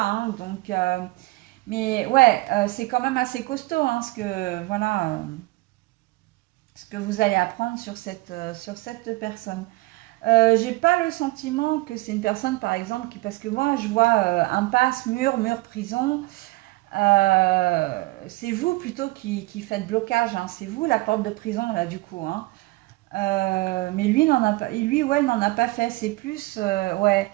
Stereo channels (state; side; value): quieter; left; 21.5 dB